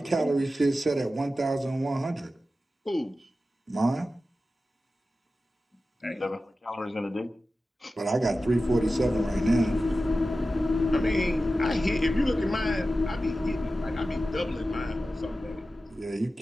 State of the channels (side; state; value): both; normal; correlation 0.94